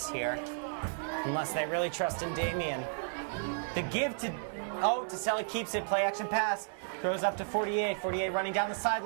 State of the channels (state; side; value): silent; left; 56 dB below the other